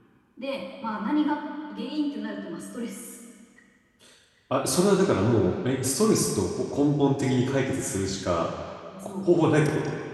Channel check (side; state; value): both; identical; correlation 1.00